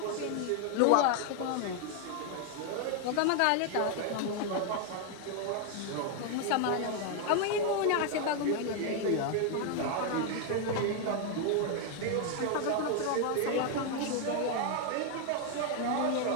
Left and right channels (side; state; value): both; different; correlation 0.00